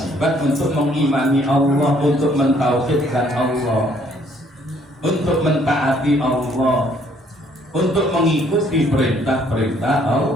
untuk mengimani Allah, untuk mentauhidkan Allah, untuk mentaati Allah, untuk mengikuti perintah-perintah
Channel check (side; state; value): both; normal; correlation 0.64